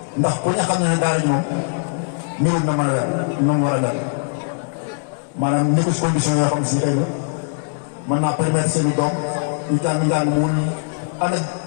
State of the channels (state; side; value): silent; right; digital silence